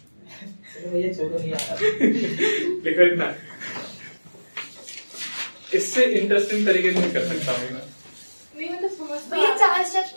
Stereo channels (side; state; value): both; inverted; correlation -1.00